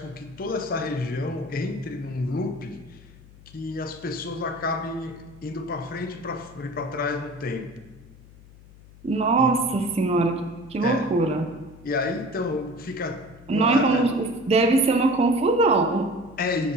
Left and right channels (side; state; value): left; noise; hum, 22 dB below the sound